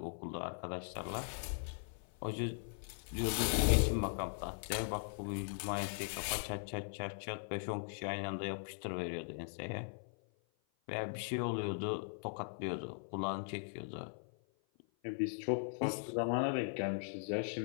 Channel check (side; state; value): right; silent; 51 dB below the other